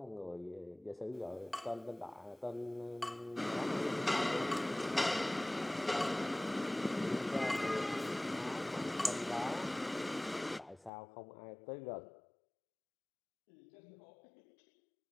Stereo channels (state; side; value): drops out; right; at 10.9 s